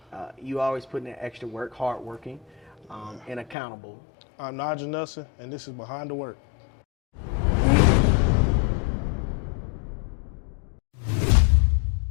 You always put in that extra work, hardworking, and accountable. I'm Nigel Nelson, and this is Behind the Work.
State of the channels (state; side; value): drops out; right; at 3.6 s